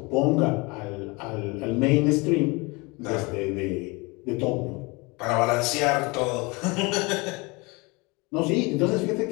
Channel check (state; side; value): quieter; right; 26.4 dB